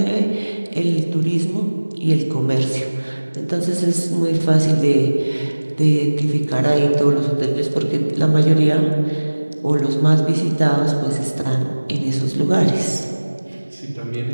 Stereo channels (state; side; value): inverted; both; correlation -1.00